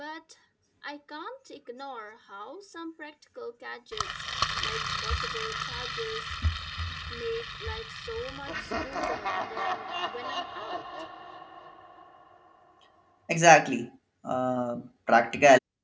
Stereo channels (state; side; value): identical; both; correlation 1.00